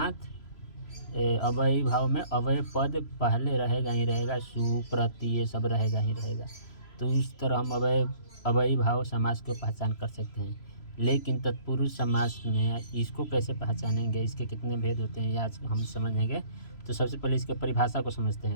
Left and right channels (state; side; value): late; right; 3.0 ms